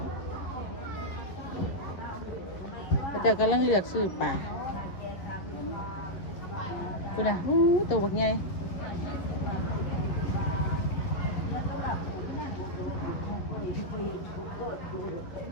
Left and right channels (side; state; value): right; late; 10 ms